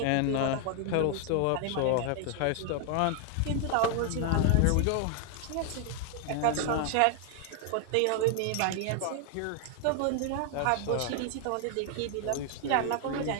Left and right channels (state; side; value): different; both; correlation 0.00